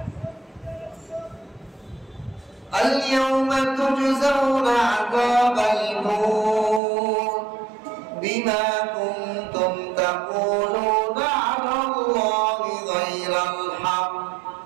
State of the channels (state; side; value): drops out; left; at 6.8 s